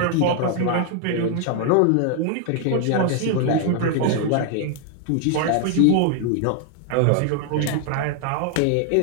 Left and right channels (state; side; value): different; both; correlation 0.00